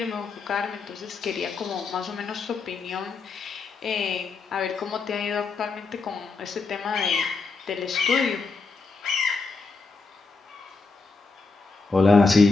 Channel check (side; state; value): right; quieter; 4.2 dB